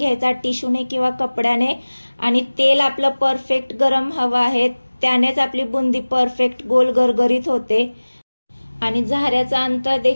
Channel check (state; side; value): inverted; both; correlation -1.00